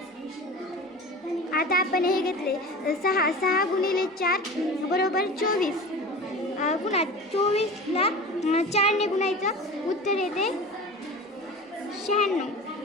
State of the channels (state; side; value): normal; both; correlation 0.34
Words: आता आपण हे घेतले 6 गुणिले 4 बरोबर 24. पुन्हा 24ला 4ने गुणायचं. उत्तर येते 96.